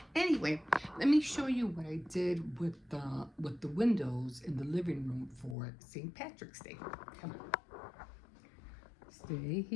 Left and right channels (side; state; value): right; drops out; at 5.6 s